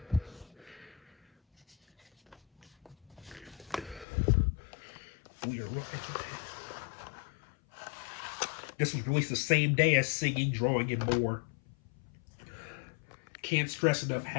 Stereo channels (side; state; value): right; drops out; at 4.0 s